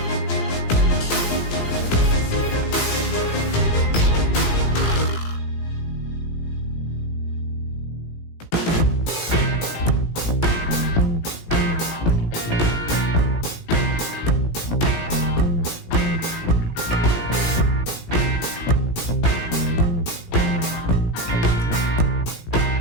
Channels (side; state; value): right; late; 17 ms